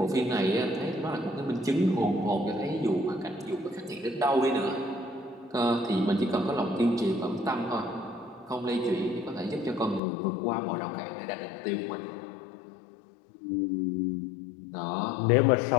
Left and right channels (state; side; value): drops out; right; at 10.0 s